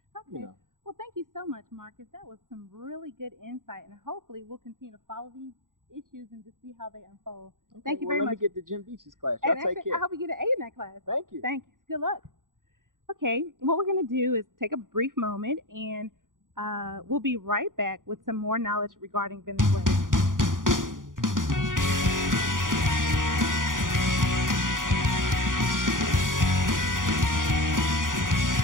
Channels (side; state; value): left; late; 0.89 ms